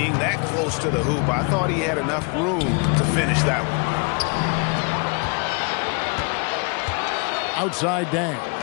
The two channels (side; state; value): right; quieter; 33.5 dB